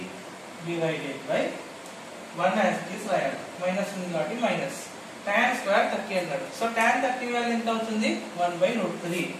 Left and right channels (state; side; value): identical; both; correlation 1.00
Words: divided by 1 as it is రాయాలి, మైనస్ ఉంది కాబట్టి మైనస్. tan స్క్వేర్ 30 అన్నాడు. సో tan 30 వాల్యూ ఎంత అవుతుంది? 1/√3.